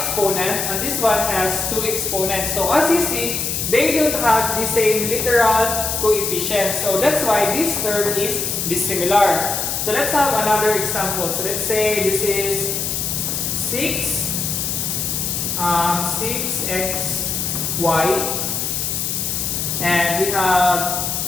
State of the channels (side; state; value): left; noise; hiss, 1 dB below the sound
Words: and this one has two exponents. So as you see, they don't have the same literal coefficient. So that's why this term is dissimilar. So let's have another example. So let's say this is 6xy and we have